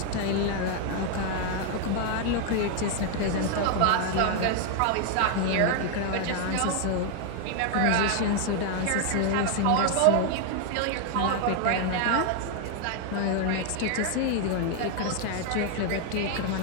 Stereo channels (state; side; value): different; both; correlation 0.00